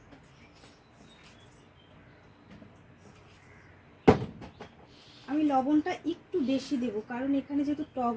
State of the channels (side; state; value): both; identical; correlation 1.00